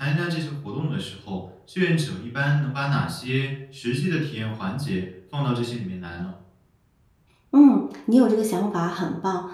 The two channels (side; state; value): both; identical; correlation 1.00